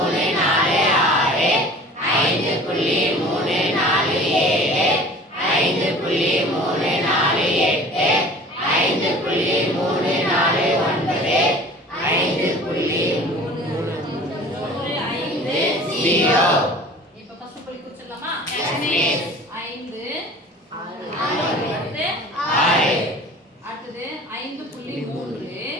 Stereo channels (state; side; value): normal; both; correlation 0.44